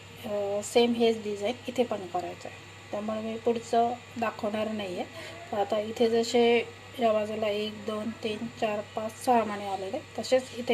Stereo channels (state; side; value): identical; both; correlation 1.00